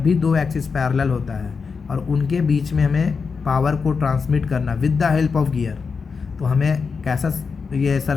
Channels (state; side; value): quieter; right; 5.3 dB